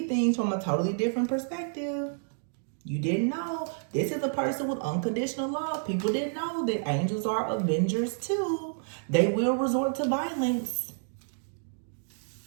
things from a totally different perspective. You didn't know. This is a person with unconditional love. People didn't know that angels are avengers too. They will resort to violence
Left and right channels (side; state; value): left; silent; digital silence